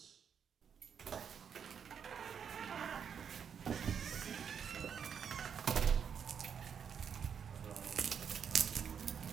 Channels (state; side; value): quieter; left; 7.4 dB